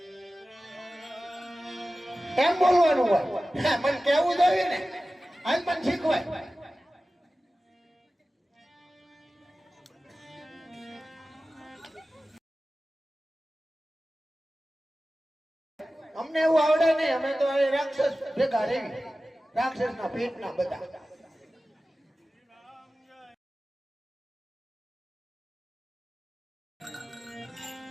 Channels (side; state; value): both; normal; correlation 0.96